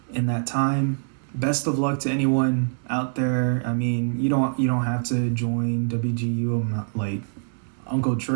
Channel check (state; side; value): silent; left; digital silence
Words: in that time. Best of luck to anyone out there. I mean, you don't have to join WGU. I'm not like Uncle